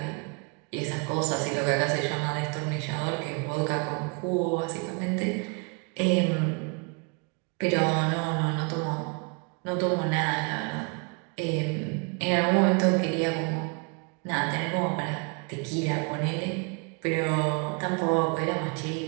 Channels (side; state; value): left; quieter; 34.5 dB